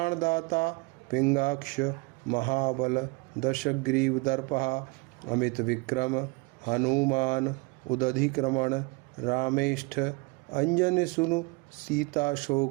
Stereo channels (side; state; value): left; quieter; 26.7 dB